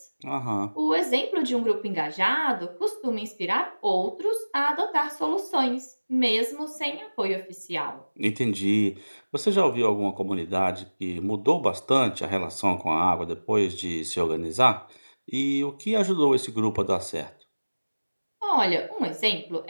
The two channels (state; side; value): inverted; both; correlation -1.00